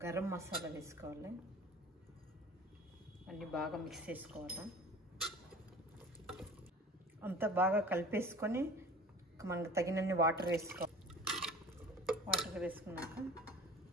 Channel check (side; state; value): both; normal; correlation 0.42